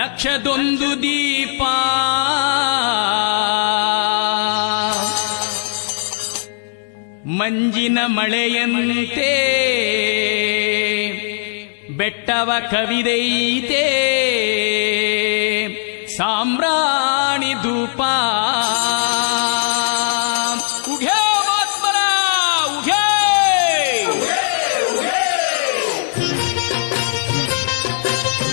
ದೀಪ ಮಂಜಿನ ಮಳೆಯಂತೆ ಬೆಟ್ಟವ ಕವಿದೈತೆ ಸಾಮ್ರಾಣಿ ಧೂಪ ಉಘೇ ಮಾತ್ಮರ ಉಘೇ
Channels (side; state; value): right; silent; digital silence